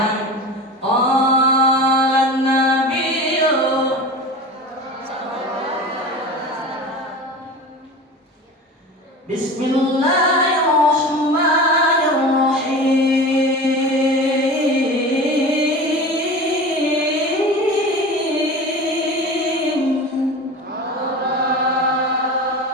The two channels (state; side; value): normal; both; correlation 0.33